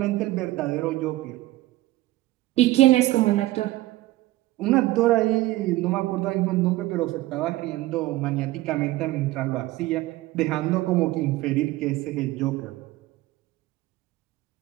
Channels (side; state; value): left; quieter; 17.4 dB